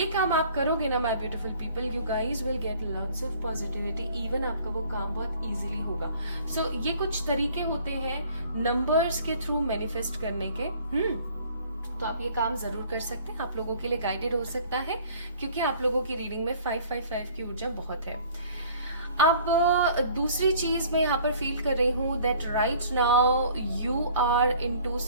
काम आप करोगे ना my beautiful people, you guys will get lots of positivity. Even आपका वो काम बहुत इजीली होगा। सो ये कुछ तरीके होते हैं नंबर्स के थ्रू मैनिफेस्ट करने के। तो आप ये काम जरूर कर सकते हैं, आप लोगों के लिए गाइडेड हो सकता है, क्योंकि आप लोगों की रीडिंग में 555 की ऊर्जा बहुत है। अब दूसरी चीज मैं यहाँ पर फील कर रही हूँ that right now you are into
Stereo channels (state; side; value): inverted; both; correlation -0.53